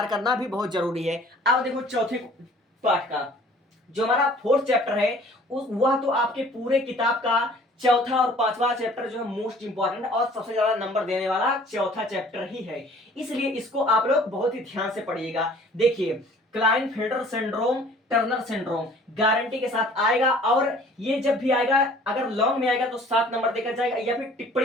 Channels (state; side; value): normal; both; correlation 0.52